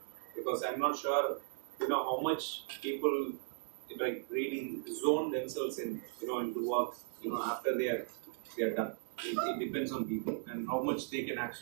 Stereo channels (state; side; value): silent; left; digital silence